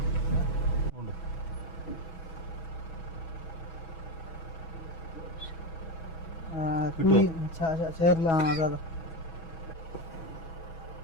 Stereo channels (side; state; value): right; late; 6.2 ms